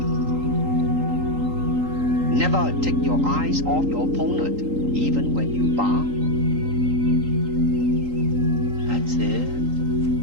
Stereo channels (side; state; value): left; late; 3.8 ms